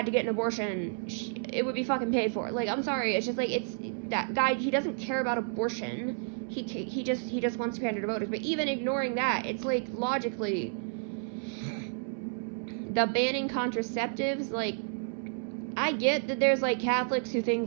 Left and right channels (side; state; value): left; silent; 57 dB below the other